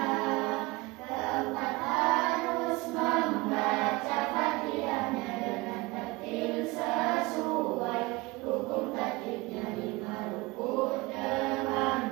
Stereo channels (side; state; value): left; quieter; 22.8 dB